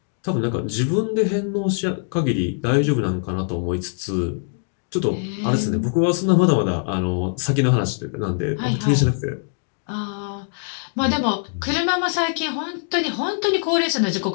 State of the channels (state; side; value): silent; right; digital silence